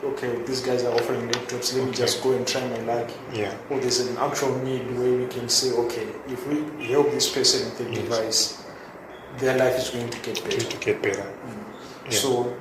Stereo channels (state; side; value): identical; both; correlation 1.00